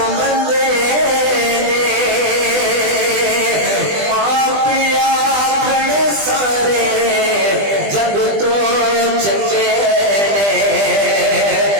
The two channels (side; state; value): left; late; 20 ms